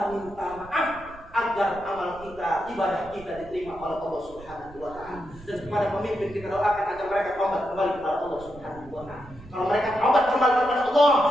minta maaf agar amal kita, ibadah kita diterima oleh Allah Subhanahu wa Ta'ala. Dan kepada pemimpin kita doakan agar mereka tobat kembali kepada Allah Subhanahu wa Ta'ala. Kalau mereka tobat kembali kepada Allah,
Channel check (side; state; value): right; noise; rumble, 19 dB below the sound